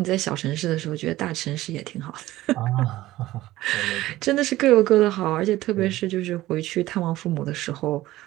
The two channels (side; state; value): left; quieter; 16.3 dB